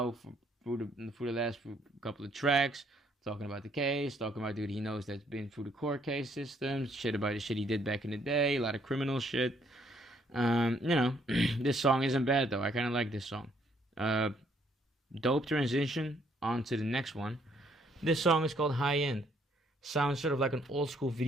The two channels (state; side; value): normal; both; correlation 0.67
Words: for the last couple of tracks. Talking about the case, talking about dude he knows that's been through the court case system, shit about the shit he did back in the day, a lot of criminal shit. This song isn't bad though. I kind of like this song. Dope transition on to the next one. This song is called High End. Sounds sort of like an old school